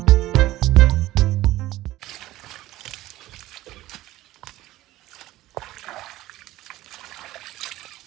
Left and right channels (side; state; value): left; quieter; 16.2 dB